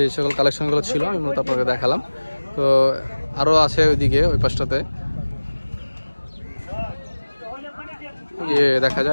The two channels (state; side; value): inverted; both; correlation -1.00